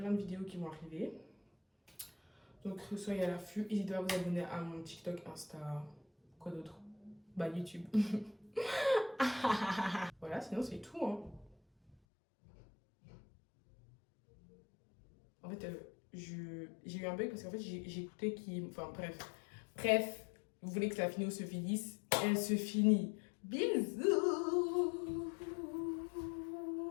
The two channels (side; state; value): right; drops out; at 12.0 s